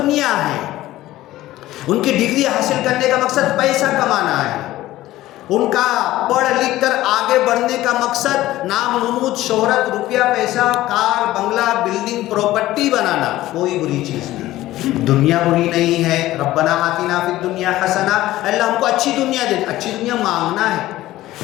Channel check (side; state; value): right; quieter; 15.8 dB